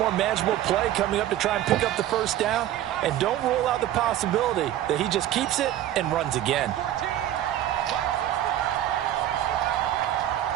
manageable play coming up to try and pick up the first down. And don't rule out the possibility that he just keeps it and runs again.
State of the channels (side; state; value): left; quieter; 12.6 dB